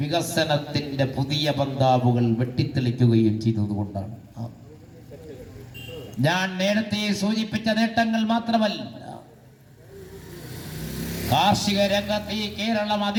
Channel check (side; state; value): both; identical; correlation 1.00